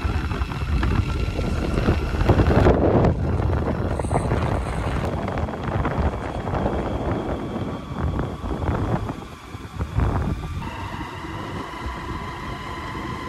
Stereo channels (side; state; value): both; identical; correlation 1.00